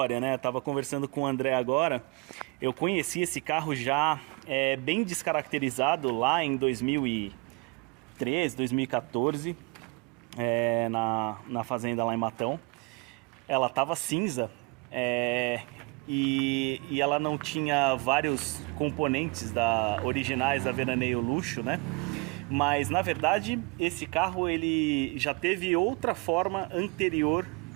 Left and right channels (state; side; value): quieter; left; 27.1 dB